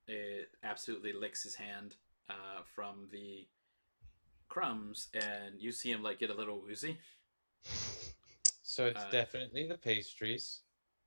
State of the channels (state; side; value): inverted; both; correlation -1.00